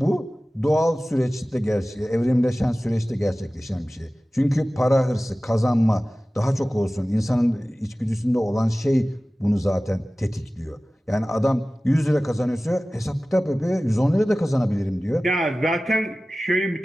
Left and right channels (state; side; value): normal; both; correlation 0.97